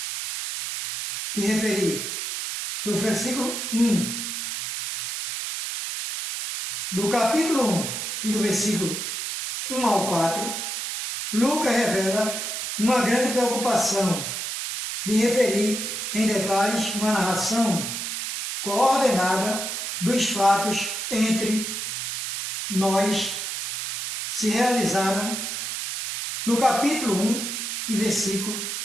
me referi, do versículo 1, do capítulo 1 e do versículo 1 ao 4, Lucas revela uma grande preocupação de referir em detalhes uma narração coordenada dos fatos entre nós se realizaram no capítulo 1 e versículo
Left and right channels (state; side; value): noise; right; hiss, 4 dB below the sound